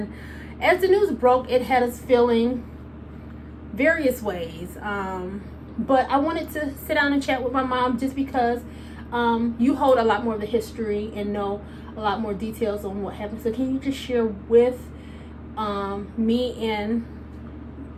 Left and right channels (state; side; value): identical; both; correlation 1.00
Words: as the news broke, it had us feeling various ways. But I wanted to sit down and chat with my mom just because you hold a lot more of the history and know a lot more details on what happened. So can you just share with me and